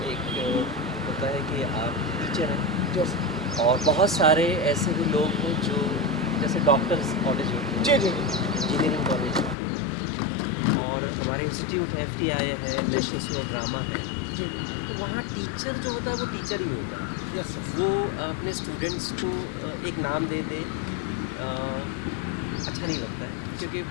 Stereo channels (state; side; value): drops out; right; at 9.6 s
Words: होता है कि आप टीचर हैं जो और बहुत सारे ऐसे भी लोग हैं जो जैसे डॉक्टर्स कॉलेज होते हैं, जी जी इंजीनियरिंग कॉलेज और हमारे इंस्टीट्यूट है, FTI है, नेशनल स्कूल ऑफ ड्रामा है। जी तो वहाँ टीचर जो होता है वो टीचर ही होता है। Yes sir. वो अपने स्टूडेंट्स को एक नाम दे दे, अच्छा नहीं लगता है, क्योंकि